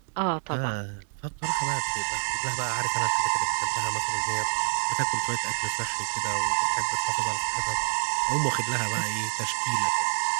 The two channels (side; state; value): left; silent; 60 dB below the other